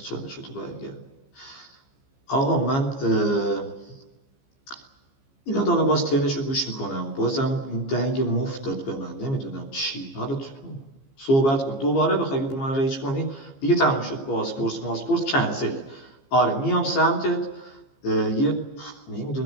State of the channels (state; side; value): late; right; 15 ms